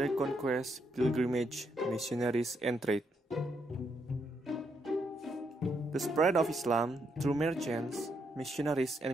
conquest, pilgrimage, missionaries, and trade. The spread of Islam through merchants, missionaries, and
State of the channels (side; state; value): both; normal; correlation 0.77